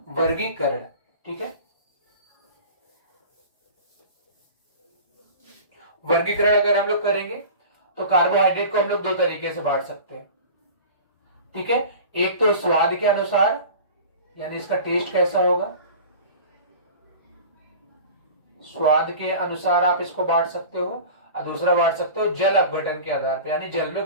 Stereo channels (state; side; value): inverted; both; correlation -0.37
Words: वर्गीकरण। ठीक है, वर्गीकरण अगर हम लोग करेंगे तो कार्बोहाइड्रेट को हम लोग दो तरीके से बांट सकते हैं। ठीक है, एक तो स्वाद के अनुसार, यानी इसका टेस्ट कैसा होगा, स्वाद के अनुसार आप इसको बांट सकते हो। और दूसरा बांट सकते हो जल अपघटन के आधार पर, यानी जल में